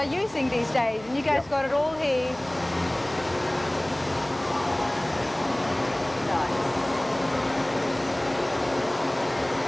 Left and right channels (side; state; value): right; noise; hum, 24 dB below the sound